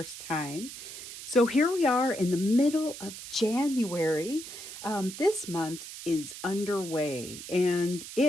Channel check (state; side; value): noise; right; hiss, 11 dB below the sound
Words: time. So, here we are in the middle of January. This month is underway, and